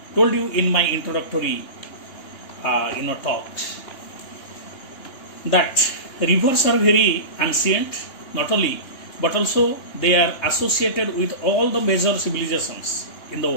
told you in my introductory talks that rivers are very ancient, not only, but also they are associated with all the major civilizations in the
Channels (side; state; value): right; late; 3.3 ms